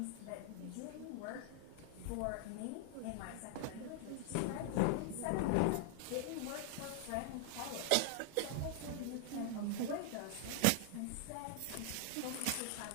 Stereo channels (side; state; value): both; different; correlation 0.00